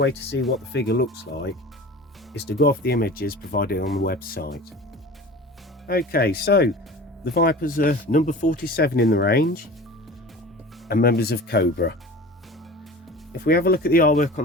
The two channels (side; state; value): both; normal; correlation 0.38